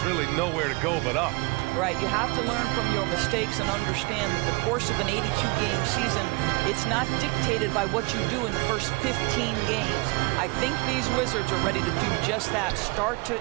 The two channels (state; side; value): quieter; left; 26.4 dB